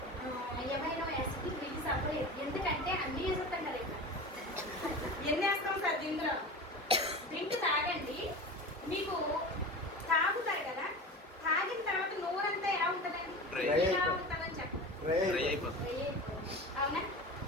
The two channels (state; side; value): normal; both; correlation 0.31